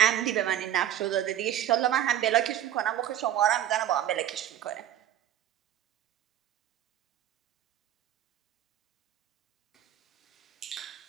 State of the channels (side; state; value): left; quieter; 11.6 dB